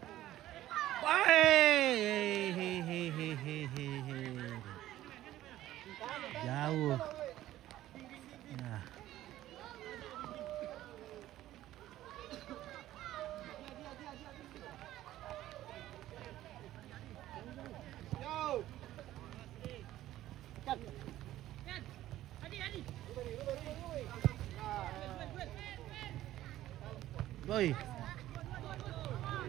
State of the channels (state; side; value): quieter; left; 14.2 dB